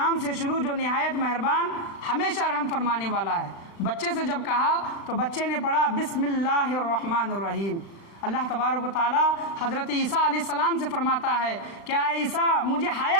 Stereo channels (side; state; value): right; late; 36 ms